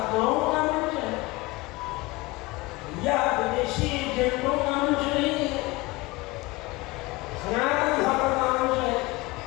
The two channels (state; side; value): quieter; right; 22.1 dB